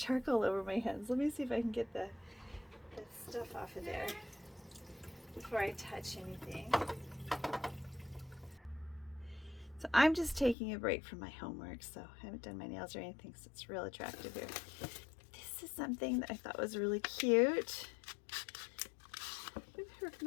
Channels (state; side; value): drops out; right; at 10.6 s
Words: over my hands. Let me see if I can get the stuff off of there before I touch anything. So I'm just taking a break from my homework, so I haven't done my nails or anything, so it's real attractive here. This is something that I thought was really cute. With her